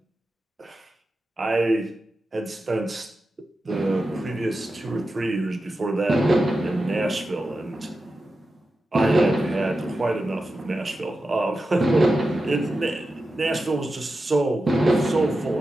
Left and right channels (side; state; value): both; normal; correlation 0.91